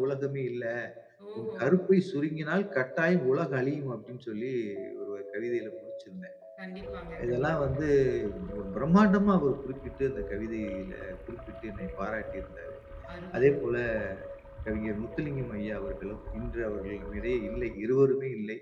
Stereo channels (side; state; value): both; identical; correlation 1.00